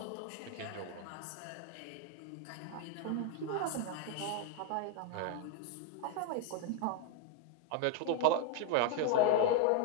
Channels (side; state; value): both; different; correlation 0.01